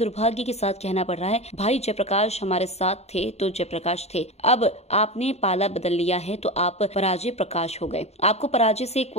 के साथ कहना पड़ रहा है, भाई जयप्रकाश हमारे साथ थे तो जयप्रकाश थे, अब आपने पाला बदल लिया है तो आप पराजय प्रकाश हो गए। आपको पराजय से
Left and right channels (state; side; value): late; right; 0.31 ms